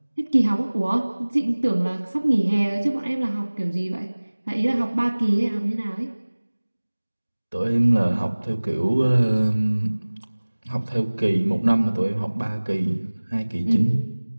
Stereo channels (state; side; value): inverted; both; correlation -1.00